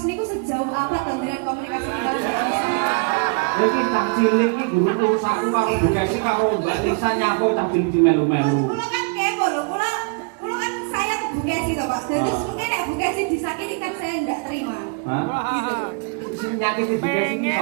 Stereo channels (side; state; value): left; quieter; 32.7 dB